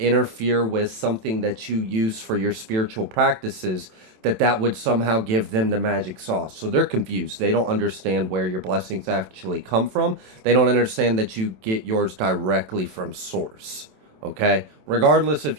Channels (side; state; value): left; late; 27 ms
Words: with something that you use for your spiritual practices, that would somehow give them the magic sauce. So they're confused. They don't understand where your blessings actually come from. They don't understand that you get yours directly from source. Okay, regardless